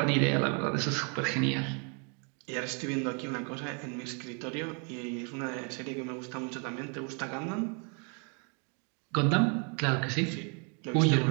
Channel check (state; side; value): quieter; left; 37.1 dB